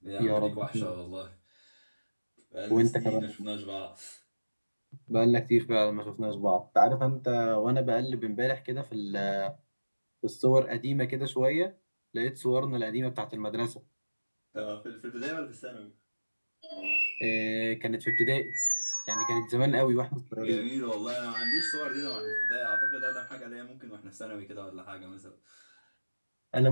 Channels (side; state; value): both; inverted; correlation -1.00